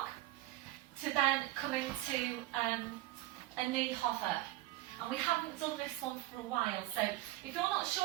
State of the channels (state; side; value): quieter; left; 16.8 dB